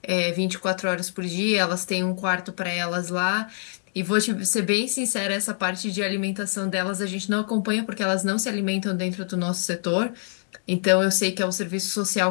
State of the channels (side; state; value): right; silent; digital silence